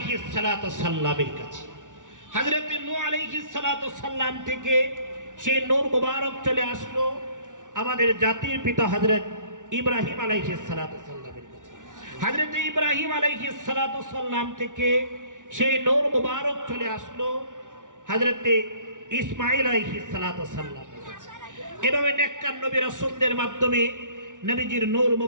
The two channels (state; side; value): late; left; 0.87 ms